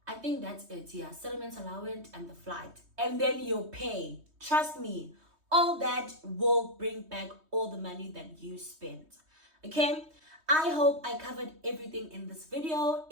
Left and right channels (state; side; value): late; left; 3.2 ms